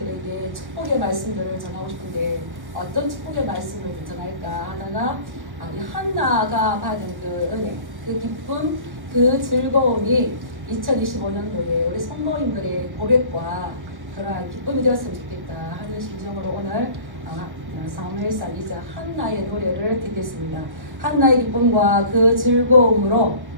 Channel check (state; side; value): late; left; 1.1 ms